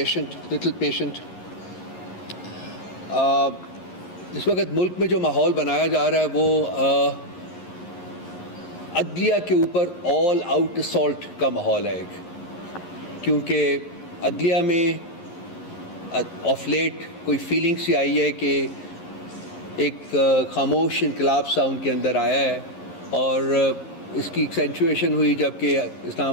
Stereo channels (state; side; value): late; right; 11 ms